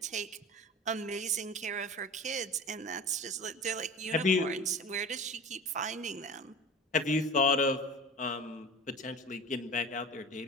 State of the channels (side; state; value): both; normal; correlation 0.35